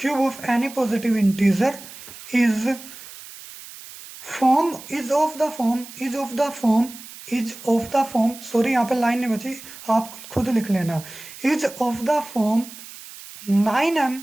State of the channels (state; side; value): noise; right; hiss, 16 dB below the sound